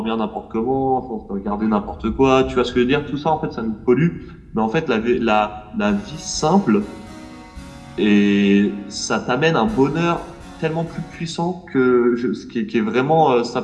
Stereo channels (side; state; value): both; identical; correlation 1.00